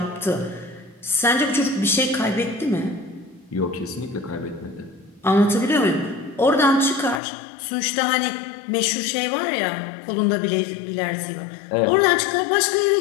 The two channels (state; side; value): drops out; right; at 7.2 s